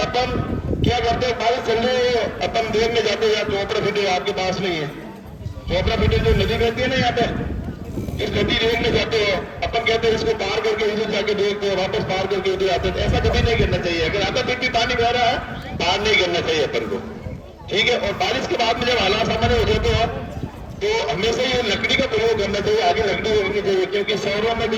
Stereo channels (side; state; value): both; identical; correlation 1.00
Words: अपन क्या करते हैं, बारिश चल रही है, अपन देखने जाते हैं, या चोपड़ा फिटे आपके पास नहीं है, चोपड़ा फिटे जो नदी बहती है ना यहाँ पे, इस नदी देखने जाते हैं, अपन कहते हैं इसको पार करके इधर जाके देखते हैं, वापस पार करके उधर आते हैं। ऐसा कभी नहीं करना चाहिए, अगर आता फिर भी पानी बह रहा है पार नहीं करना चाहिए अपन को, ठीक है। और बारिश के बाद में जब हालात सामान्य हो जाते हैं तो हमेशा ये लकड़ी का प्रयोग करना चाहिए, आगे लकड़ी रखनी चाहिए, क्योंकि शहरों में